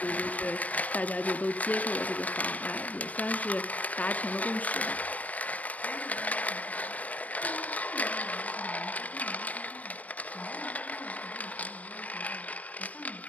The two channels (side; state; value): right; late; 0.070 ms